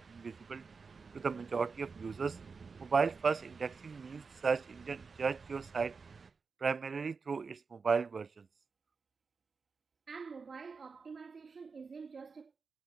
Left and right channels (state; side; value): quieter; left; 4.9 dB